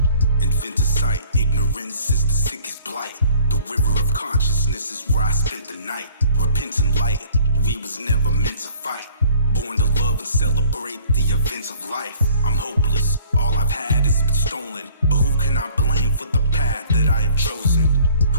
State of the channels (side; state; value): both; inverted; correlation -0.52